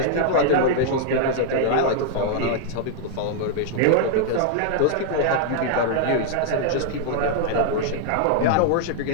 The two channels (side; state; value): both; different; correlation -0.01